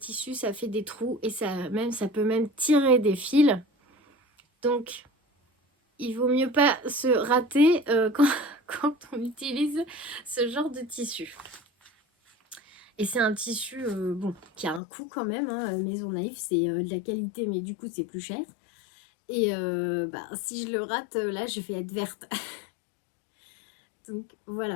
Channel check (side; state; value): right; drops out; at 14.8 s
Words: ça fait des trous et ça peut même tirer des fils. Donc, il vaut mieux pas se rater quand on utilise ce genre de tissu. Et c'est un tissu qui a un coût quand même. Hein. Maison Naïve, c'est de la qualité, mais du coup, c'est plus cher. Et si je le rate, là, je vais être verte. Donc,